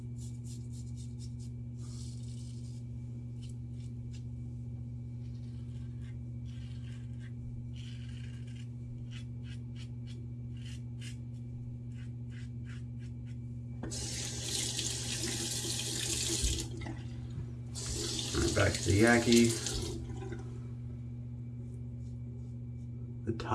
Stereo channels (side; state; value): both; identical; correlation 1.00